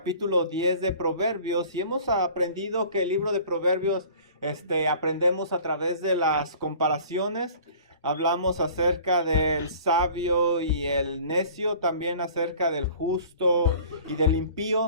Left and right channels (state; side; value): inverted; both; correlation -0.47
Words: 10 de Proverbios y hemos aprendido que el libro de Proverbios aprendemos a través de las comparaciones. Hablamos acerca del sabio y el necio, también acerca del justo y del